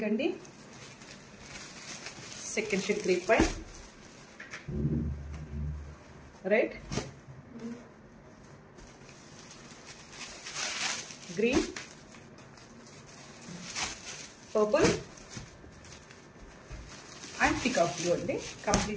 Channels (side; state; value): both; identical; correlation 1.00